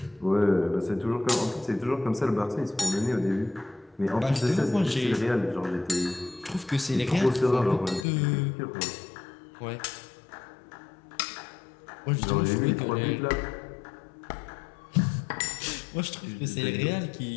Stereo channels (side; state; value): right; drops out; at 8.1 s